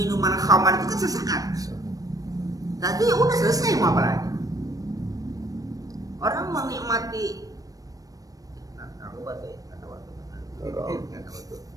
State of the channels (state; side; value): late; left; 0.18 ms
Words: khamar itu kan sesaat. Tapi ya udah selesai, mau apa lagi? Orang menikmati aku baca ya, nggak tahu.